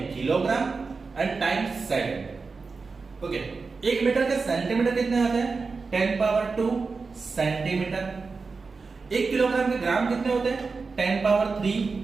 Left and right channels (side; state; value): left; quieter; 4.4 dB